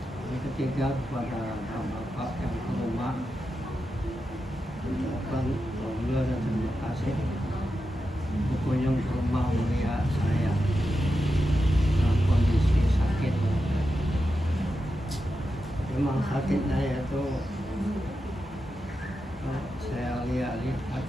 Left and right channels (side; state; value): both; normal; correlation 0.89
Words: Yang ketiga kepada Bapak yang ke rumah, ucapkan alhamdulillah dan terima kasih berkunjung ke rumah mulia saya dalam kondisi sakit. Memang sakitnya itu saya lihat